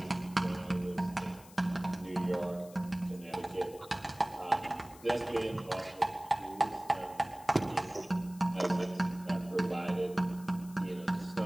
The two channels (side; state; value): left; noise; hiss, 21 dB below the sound